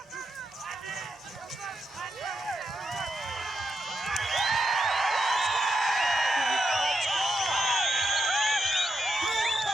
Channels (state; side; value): normal; both; correlation 0.84